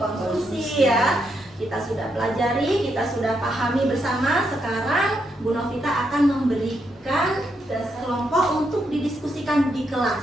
konsumsi ya. Kita sudah pelajari, kita sudah pahami bersama. Sekarang Bu Novita akan memberikan kelompok untuk didiskusikan di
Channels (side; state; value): both; normal; correlation 0.80